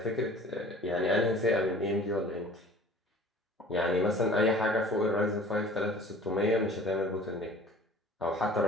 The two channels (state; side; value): normal; both; correlation 0.47